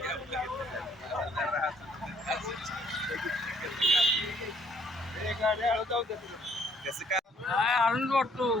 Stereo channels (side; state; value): both; normal; correlation 0.63